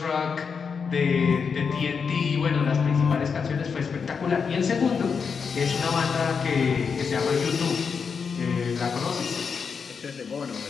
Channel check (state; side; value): quieter; right; 5.9 dB